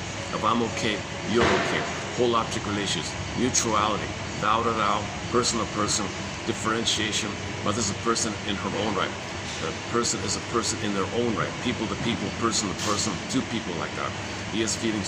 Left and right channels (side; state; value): both; identical; correlation 1.00